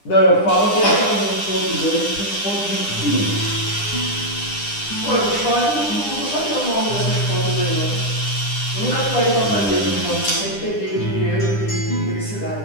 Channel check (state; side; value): late; right; 9.9 ms